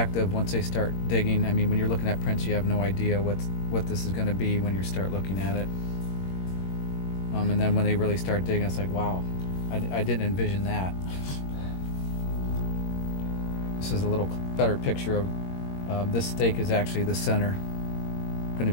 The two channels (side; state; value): right; late; 21 ms